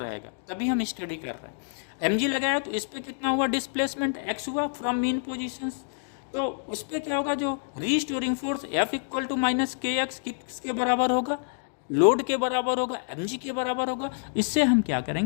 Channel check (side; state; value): right; silent; digital silence